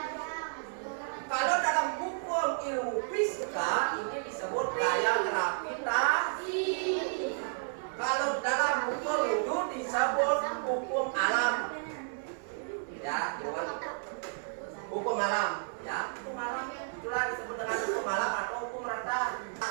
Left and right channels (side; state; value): left; silent; 55 dB below the other